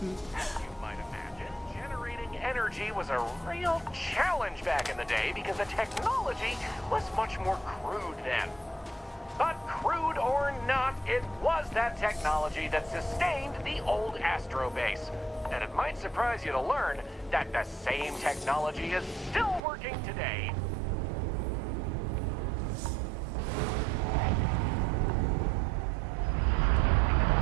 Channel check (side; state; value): left; drops out; at 19.6 s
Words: As you might imagine, generating energy was a real challenge back in the day because the technology was much more crude then. But crude or not, it was that technology that sustained the old Astro base. And it might surprise you to learn that the same technology is still working today.